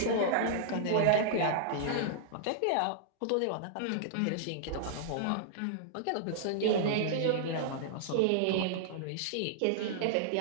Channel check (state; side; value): different; both; correlation -0.01